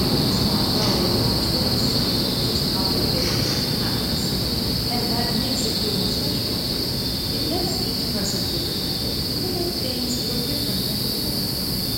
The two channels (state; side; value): identical; both; correlation 1.00